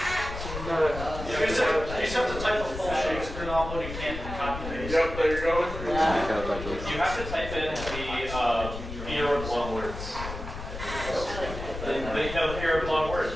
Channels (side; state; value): left; noise; rumble, 8 dB below the sound